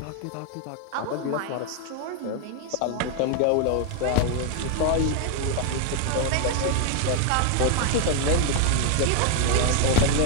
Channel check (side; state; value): both; different; correlation 0.00